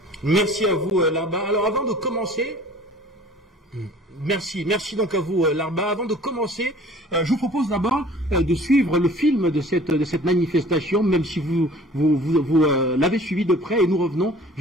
Merci à vous Larba. Alors avant de commencer... Merci donc à vous Larba. Avant de commencer, je vous propose d'abord de suivre le film de cette manifestation, même si vous l'avez suivi de près, et nous revenons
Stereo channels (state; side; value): normal; both; correlation 0.49